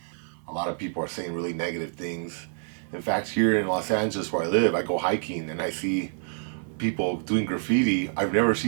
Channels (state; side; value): silent; left; 60 dB below the other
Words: A lot of people are saying really negative things. In fact, here in Los Angeles where I live, I go hiking and I see people doing graffiti. I've never